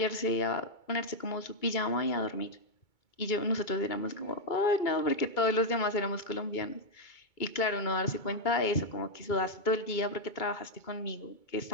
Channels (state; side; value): late; right; 2.3 ms